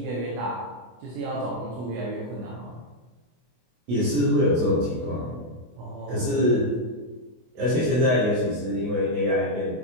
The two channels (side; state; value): left; late; 24 ms